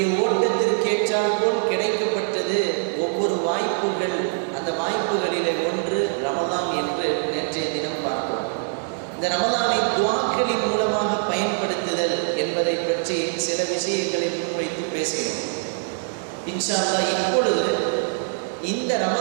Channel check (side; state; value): left; silent; 63 dB below the other